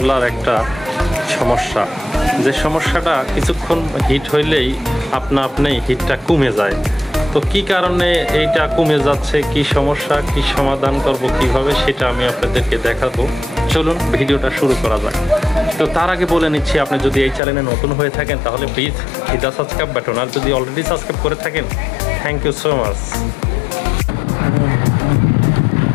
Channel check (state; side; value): drops out; right; at 17.4 s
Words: একটা সমস্যা, যে সমস্যাটা কিছুক্ষণ হিট হইলেই আপনি হিটটা কমে যায়। তো কি কারণে এইটা কমে যাচ্ছে, কি সমস্যা, কি সমাধান করব কিভাবে, সেটা আমি আপনাদেরকে দেখাবো। চলুন ভিডিওটা শুরু করা যাক। তো তার আগে বলে নিচ্ছি, আপনি যদি এই চ্যানেলে নতুন হয়ে থাকেন তাহলে please hit the subscribe button, আর যদি অলরেডি সাবস্ক্রাইব করে থাকেন thank you so much.